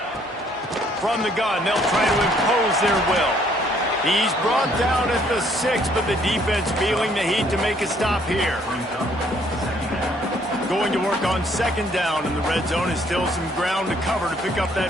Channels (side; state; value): both; normal; correlation 0.64